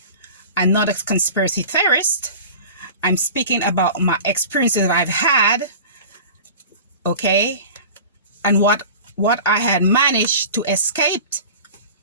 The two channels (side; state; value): both; inverted; correlation -0.37